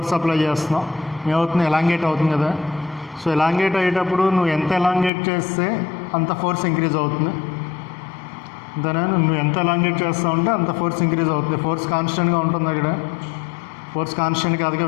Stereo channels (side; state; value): right; drops out; at 5.1 s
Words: అప్లై చేస్తున్నాం, ఏమవుతుంది, ఎలాంగేట్ అవుతుంది కదా. సో ఎలాంగేట్ అయ్యేటప్పుడు నువ్వు ఎంత ఎలాంగేట్ చేస్తే అంత ఫోర్స్ ఇంక్రీజ్ అవుతుంది. అంతేనా, నువ్వు ఎంత ఎలాంగేట్ చేస్తూ ఉంటే అంత ఫోర్స్ ఇంక్రీజ్ అవుతుంది. ఫోర్స్ కాన్స్టెంట్గా ఉంటుంది అక్కడ, ఫోర్స్ కాన్స్టెంట్ కాదుగా,